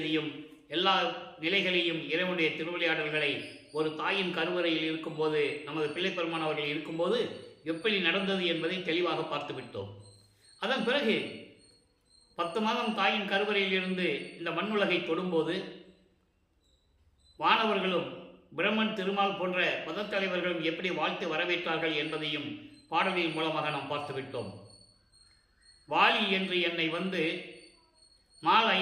எல்லா நிலைகளையும் இறைவனுடைய திருவிளையாடல்களை ஒரு தாயின் கருவறையில் இருக்கும்போது, நமது பிள்ளைப்பெருமான் அவர்கள் இருக்கும்போது எப்படி நடந்தது என்பதை தெளிவாக பார்த்து விட்டோம். அதன் பிறகு 10 மாதம் தாயின் கருவறையில் இருந்து இந்த மண்ணுலகை தொடும்போது வானவர்களும் பிரம்மன், திருமால் போன்ற மதத்தலைவர்களும் எப்படி வாழ்த்து வரவேற்றார்கள் என்பதையும் பாடலின் மூலமாக நாம் பார்த்துவிட்டோம். வாலி என்று என்னை வந்து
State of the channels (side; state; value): both; identical; correlation 1.00